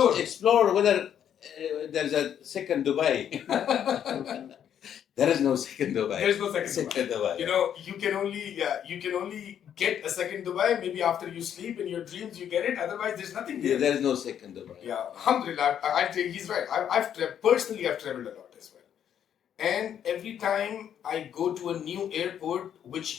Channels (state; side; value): quieter; right; 9.3 dB